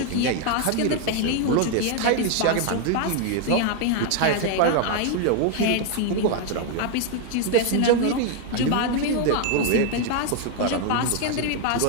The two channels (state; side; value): different; both; correlation 0.00